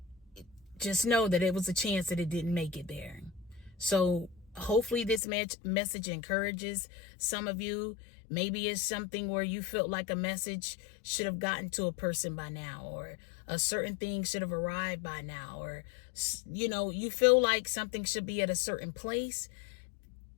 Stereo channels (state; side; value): drops out; right; at 5.2 s